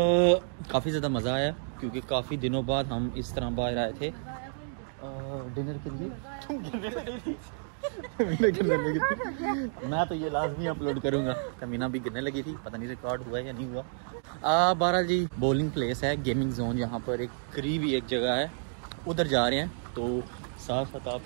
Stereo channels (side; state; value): left; silent; digital silence